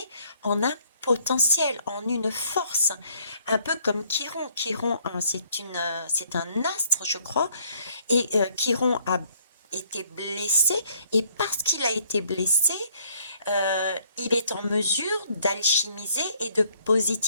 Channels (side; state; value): both; inverted; correlation -0.64